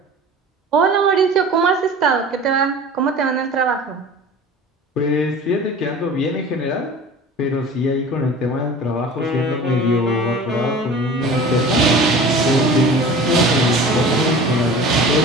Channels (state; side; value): normal; both; correlation 0.40